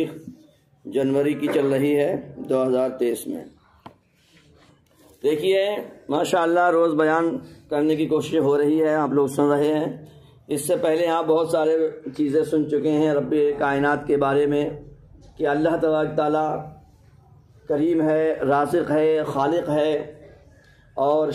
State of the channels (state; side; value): identical; both; correlation 1.00